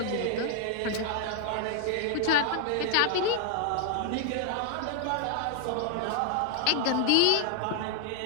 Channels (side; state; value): both; different; correlation 0.00